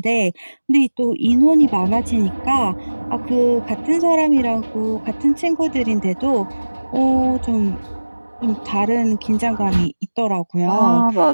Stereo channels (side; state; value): both; inverted; correlation -1.00